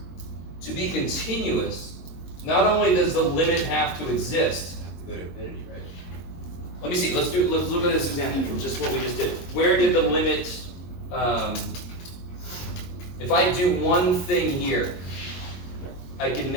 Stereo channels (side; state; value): right; late; 22 ms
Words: To be continuous, not only does the limit have to exist. Have to go to infinity, right? Let me see. Let's look at this example from just what we just did. Where did the limit? If I do one thing here, I can